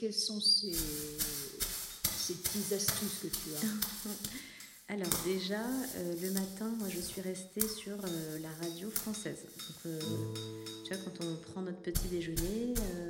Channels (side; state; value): both; identical; correlation 1.00